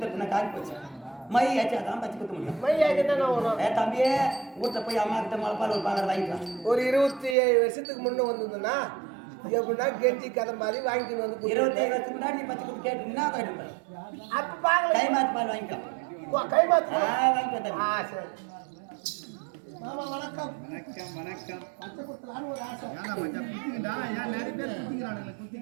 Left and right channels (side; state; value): left; drops out; at 7.4 s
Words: காஞ்சி போச்சு மை ஆச்சாதான் பச்சை குத்த முடியும் மை ஆச்சுன்னா வரும் தம்பியே வீட்டுல போய் அம்மா கிட்ட மலைப்பால் ஒரு பாலர் வாங்கிக்கலாம் ஒரு 27 வருஷத்துக்கு முன்ன வந்ததுன்னா எப்படின்னா கெஞ்சி கதை மாதிரி வாங்கிட்டு வந்து 27 வருஷத்துக்கு முன்னாடி நீ பச்சை குத்து கேட்டுனா கேட்டுப்பேன் அப்ப பாக்கல கை மாத்து பால் வாங்கிக்கலாம் கை மாத்து வாங்கிக்கலாம் சரி மாமா வணக்கம். வணக்கம் வணக்கம். பச்சை குத்தலான்னு ஒரு ஆசை. ஏன்னா மச்சான் குத்திக்கிட்டா ஏன் நிறைய பேர் குத்திக்கிறானுங்களே